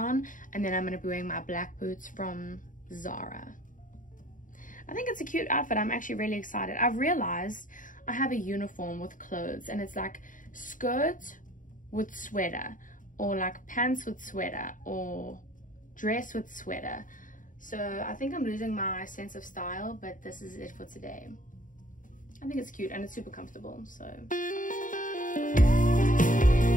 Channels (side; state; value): right; late; 0.38 ms